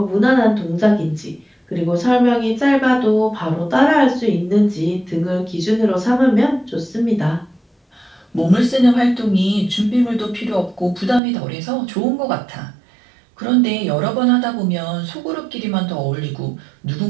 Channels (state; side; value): drops out; left; at 11.2 s